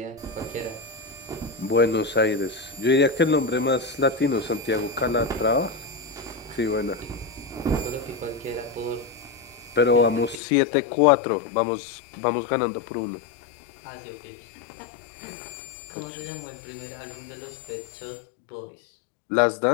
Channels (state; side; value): drops out; right; at 10.4 s